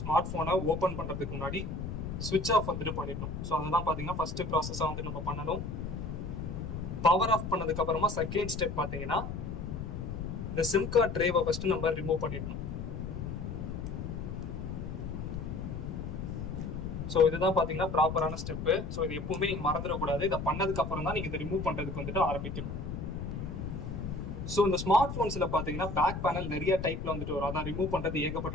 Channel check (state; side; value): noise; left; rumble, 5 dB below the sound